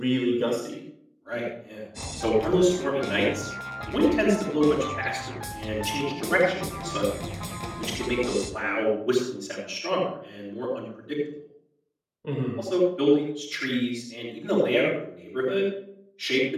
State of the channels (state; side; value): identical; both; correlation 1.00